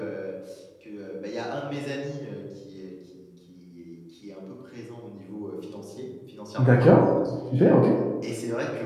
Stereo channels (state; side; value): identical; both; correlation 1.00